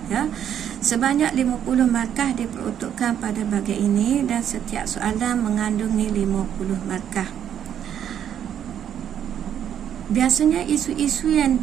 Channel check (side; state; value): left; quieter; 9.5 dB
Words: Sebanyak 50 markah diperuntukkan pada bahagian ini dan setiap soalan mengandungi 50 markah. Biasanya isu-isu yang